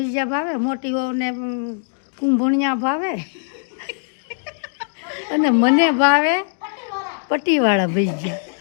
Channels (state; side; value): silent; right; digital silence